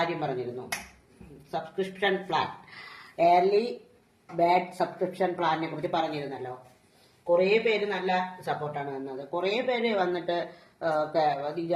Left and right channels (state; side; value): identical; both; correlation 1.00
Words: പറഞ്ഞിരുന്നു, subscription plan, early bird subscription പ്ലാനിനെ കുറിച്ച് പറഞ്ഞിരുന്നല്ലോ. കുറേ പേര് നല്ല സപ്പോർട്ടാണ് തന്നത്. കുറേ പേര് വന്നിട്ട് അത്